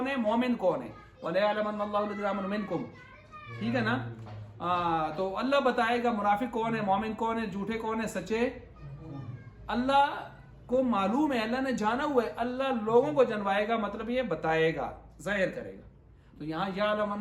ہے، مومن کون ہے. وَلَيَعْلَمَنَّ اللَّهُ الَّذِينَ آمَنُوا مِنكُمْ. ٹھیک ہے نا. تو اللہ بتائے گا منافق کون ہے، مومن کون ہے، جھوٹے کون ہے، سچے. اللہ کو معلوم ہے، اللہ نے جانا ہوا ہے. اللہ لوگوں کو جنوائے گا، مطلب یہ بتائے گا، ظاہر کرے گا. تو یہاں یا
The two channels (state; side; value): identical; both; correlation 1.00